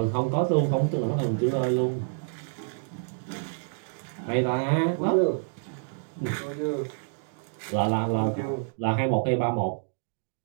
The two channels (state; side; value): silent; left; digital silence